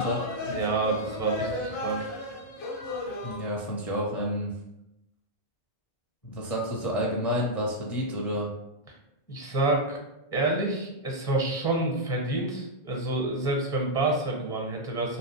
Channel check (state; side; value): late; right; 1.1 ms